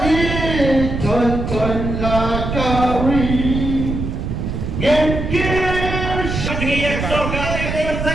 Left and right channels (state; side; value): noise; right; rumble, 3 dB below the sound